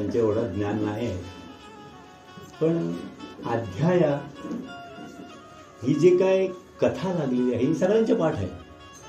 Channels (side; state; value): both; identical; correlation 1.00